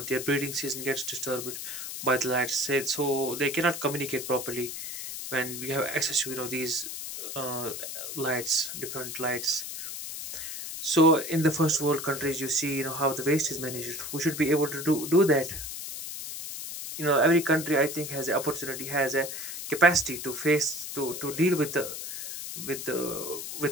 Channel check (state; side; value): noise; left; hiss, 7 dB below the sound